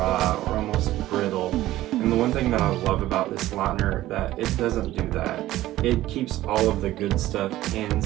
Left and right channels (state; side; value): quieter; left; 15.3 dB